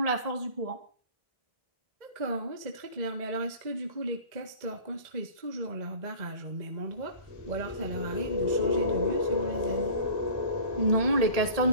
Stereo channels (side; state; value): left; late; 1.7 ms